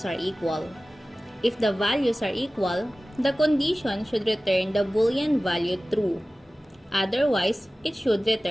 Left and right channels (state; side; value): normal; both; correlation 0.96